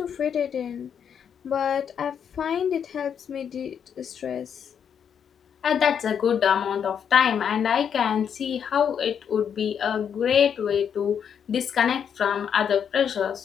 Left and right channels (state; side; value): quieter; right; 7.8 dB